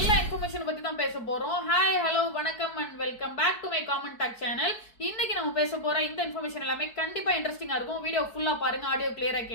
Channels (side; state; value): right; late; 4.6 ms